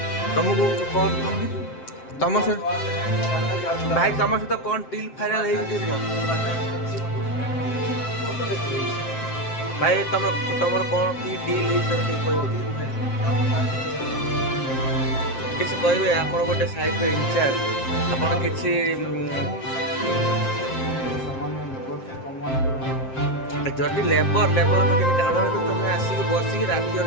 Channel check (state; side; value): late; right; 7.6 ms